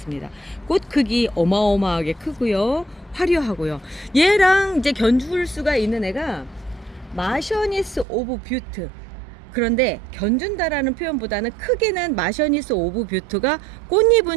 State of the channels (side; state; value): left; drops out; at 8.1 s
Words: 꽃 크기 어마어마하게 크고요, 화려하고요. 얘랑 이제 견줄 수가 있는 애가 마셔니스 오브 뷰트. 그런데 견준다라는 표현보다는 크기는 마셔니스 오브 뷰트가